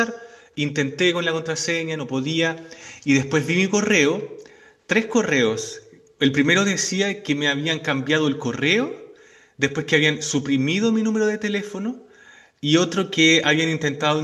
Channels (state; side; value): identical; both; correlation 1.00